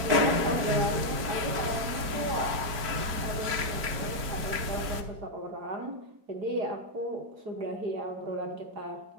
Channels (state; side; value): late; left; 4.5 ms